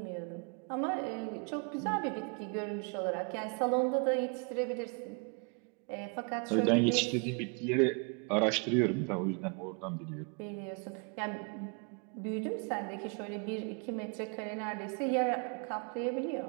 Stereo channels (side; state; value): left; quieter; 36.6 dB